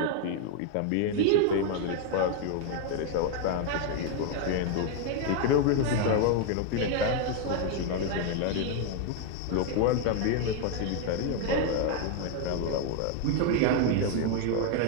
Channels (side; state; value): both; different; correlation 0.01